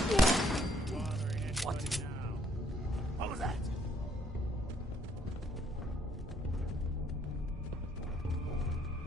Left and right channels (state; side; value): normal; both; correlation 0.67